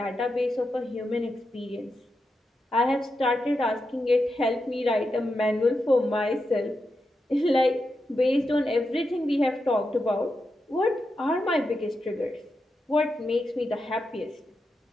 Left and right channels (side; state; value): both; normal; correlation 0.87